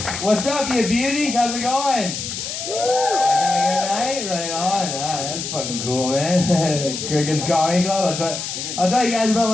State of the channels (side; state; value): left; noise; hiss, 6 dB below the sound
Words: What's up, you beauties? How's it going? Having a good night? Right on. That's fucking cool, man. Cricket's Comedy Club. I'll tell you guys about